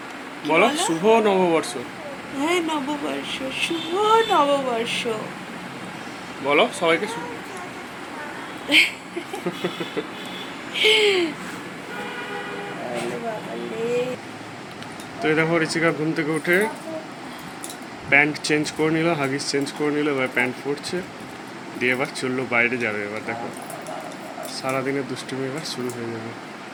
বলো বলো? শুভ নববর্ষ। হ্যাঁ, নববর্ষ, শুভ নববর্ষ। বলো সবাইকে তো এই দেখো ঋষিকা ঘুম থেকে উঠে প্যান্ট চেঞ্জ করে নিল, হাগিস চেঞ্জ করে নিল, এবার প্যান্ট পরছে, দিয়ে এবার চললো বাইরে যাবে। এবার দেখো সারাদিনের দুষ্টুমি এবার শুরু হয়ে যাবে।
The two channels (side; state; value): both; identical; correlation 1.00